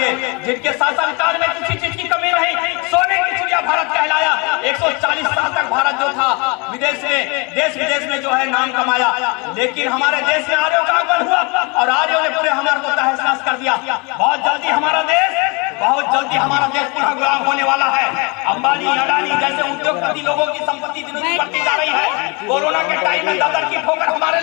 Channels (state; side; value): quieter; right; 30.0 dB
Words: जिनके शासनकाल में किसी चीज की कमी नहीं, सोने की चिड़िया भारत कहलाया। 140 साल तक भारत जो था विदेश में, देश विदेश में जो है नाम कमाया, लेकिन हमारे देश में आर्यों का आगमन हुआ और आर्यों ने पूरे हमारे को तहस नहस कर दिया। बहुत जल्दी हमारा देश पुनः गुलाम होने वाला है। अंबानी, अडानी जैसे उद्योगपति लोगों की संपत्ति दिन दिन बढ़ती जा रही है। कोरोना के टाइम में दादर की ठोकर हमारे